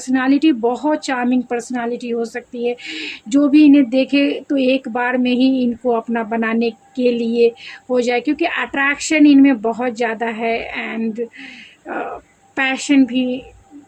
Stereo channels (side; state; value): both; identical; correlation 1.00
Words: बहुत चार्मिंग पर्सनालिटी हो सकती है। जो भी इन्हें देखे तो एक बार में ही इनको अपना बनाने के लिए हो जाए, क्योंकि अट्रैक्शन इनमें बहुत ज़्यादा है, एंड पैशन भी